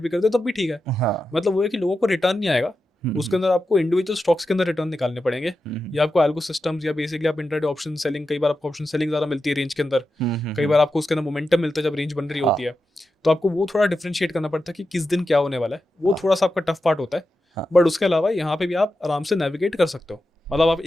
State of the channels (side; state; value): both; normal; correlation 0.90